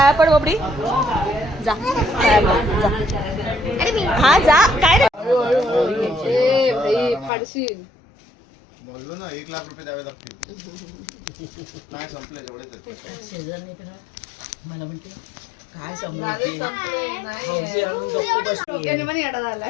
पड बबडी जा पाया पड, जा. अरे मी हा जा काय रे फाडशील. बोललो ना 1 लाख रुपये द्यावे लागतील. नाही संपले जेवढेच मला म्हणते काय समजते हौशी आणून गप्प बसली. डोक्याने पण येडा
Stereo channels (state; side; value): drops out; right; at 7.3 s